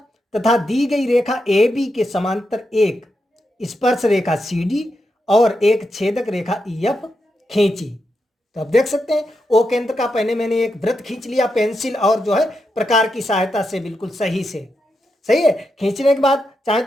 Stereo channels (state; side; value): normal; both; correlation 0.85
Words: तथा दी गई रेखा ए बी के समांतर एक स्पर्श रेखा सी डी और एक छेदक रेखा ई एफ खींची। तो आप देख सकते हैं ओ केंद्र का पहले मैंने एक वृत्त खींच लिया पेंसिल और जो है प्रकार की सहायता से, बिल्कुल सही से। सही है, खींचने के बाद चाहे